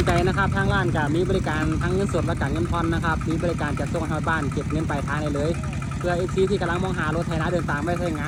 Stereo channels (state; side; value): identical; both; correlation 1.00